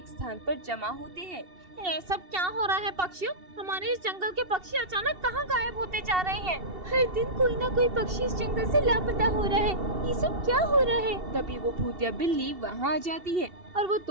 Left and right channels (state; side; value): late; left; 2.7 ms